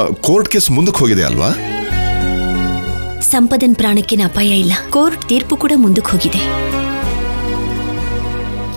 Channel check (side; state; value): both; inverted; correlation -1.00